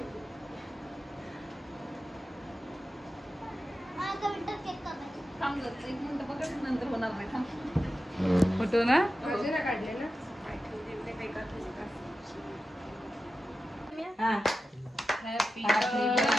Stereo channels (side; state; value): both; normal; correlation 0.92